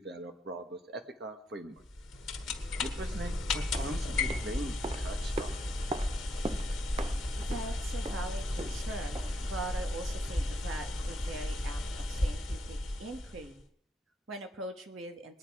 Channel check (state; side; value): normal; both; correlation 0.77